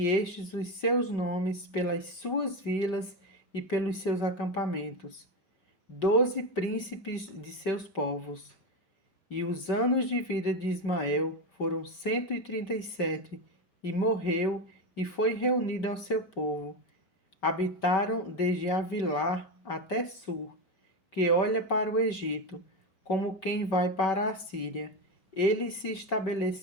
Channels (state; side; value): late; right; 5.2 ms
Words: estes os seus nomes pelas suas vilas e pelos seus acampamentos. 12 príncipes de seus povos. E os anos de vida de Ismael foram 137, e morreu e foi reunido ao seu povo. Habitaram desde Avilá até Sur, que olha para o Egito, como quem vai para a Síria. Ele se